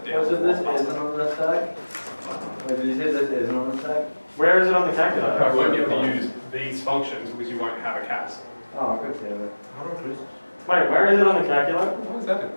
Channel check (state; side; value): inverted; both; correlation -1.00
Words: down. So this isn't on the stack? Wait, did you say this isn't on the stack? Where is it on the calculator? You won't be able to use these functions because you won't have a CAS. Oh, good damn it. Wait, where is it on the calculator? Why is that in